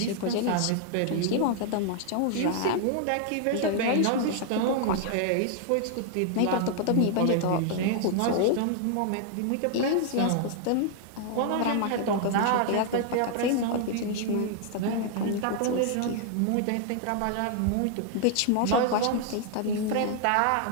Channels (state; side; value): different; both; correlation 0.00